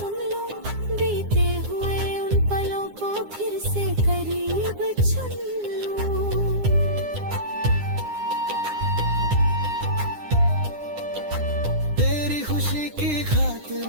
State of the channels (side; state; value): left; late; 9.8 ms